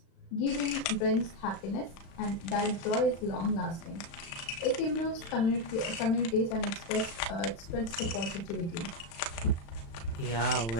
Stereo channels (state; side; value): late; right; 36 ms